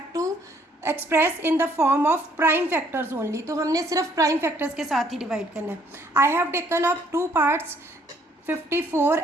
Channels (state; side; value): normal; both; correlation 0.64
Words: to express in the form of prime factors only. तो हमने सिर्फ prime factors के साथ ही divide करना है. I have taken up 2 parts, 54